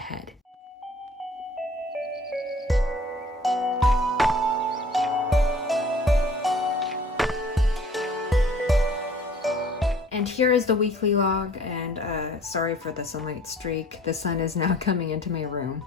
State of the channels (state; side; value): normal; both; correlation 0.52